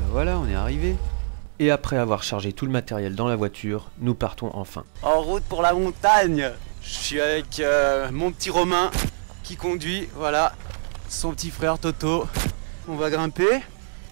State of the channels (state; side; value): silent; left; digital silence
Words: voilà, on est arrivé. Et après avoir chargé tout le matériel dans la voiture, nous partons enfin. En route pour la montagne. Je suis avec mon petit Romain qui conduit, voilà. Son petit frère Toto. On va grimper.